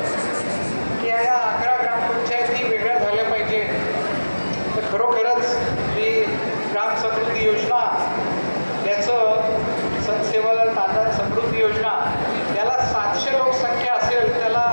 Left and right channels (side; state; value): both; inverted; correlation -1.00